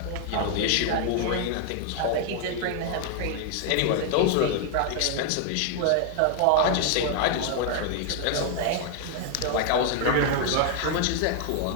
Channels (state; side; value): different; both; correlation 0.00